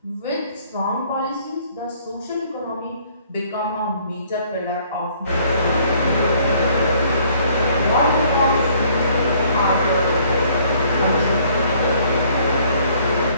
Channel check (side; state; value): both; inverted; correlation -0.61